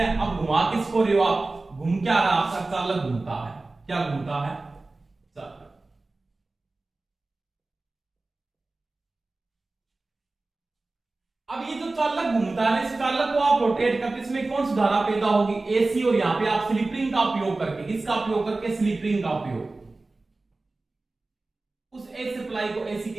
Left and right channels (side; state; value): left; quieter; 3.3 dB